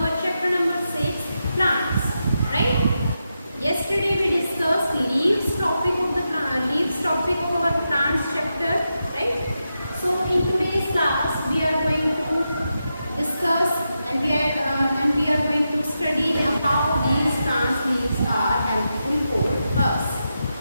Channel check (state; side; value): inverted; both; correlation -0.87